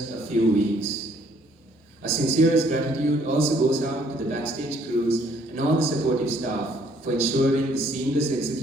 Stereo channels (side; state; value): both; normal; correlation 0.64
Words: a few weeks. Our sincerest gratitude also goes out to the backstage crews and all the supportive staff for ensuring the seamless